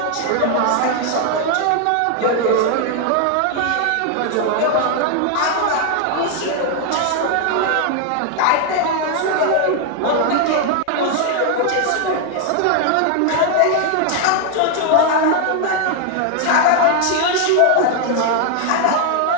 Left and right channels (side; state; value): both; different; correlation 0.00